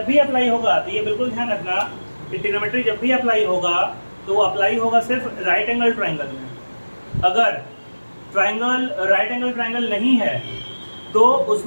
भी अप्लाई होगा तो ये बिल्कुल ध्यान रखना कि ट्रिग्नोमेट्री जब भी अप्लाई होगा तो वो अप्लाई होगा सिर्फ राइट एंगल ट्रायंगल में। अगर ट्रायंगल राइट एंगल ट्रायंगल नहीं है तो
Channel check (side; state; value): both; inverted; correlation -1.00